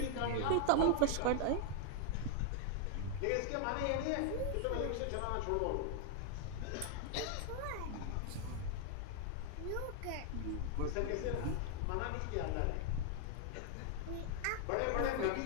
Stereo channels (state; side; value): different; both; correlation 0.00